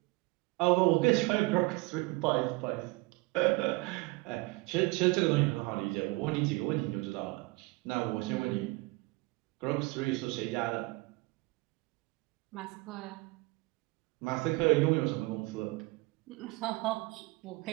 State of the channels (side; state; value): left; quieter; 24.2 dB